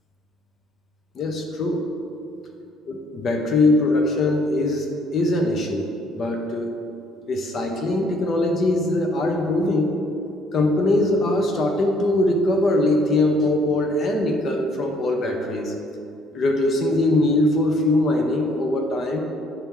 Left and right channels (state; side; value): normal; both; correlation 0.64